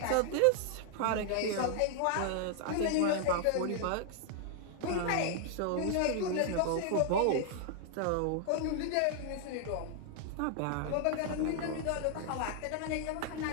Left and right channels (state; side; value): different; both; correlation 0.00